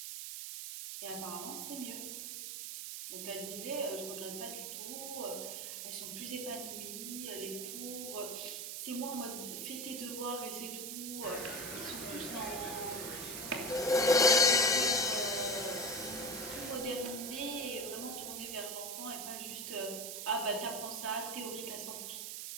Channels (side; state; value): right; noise; hiss, 5 dB below the sound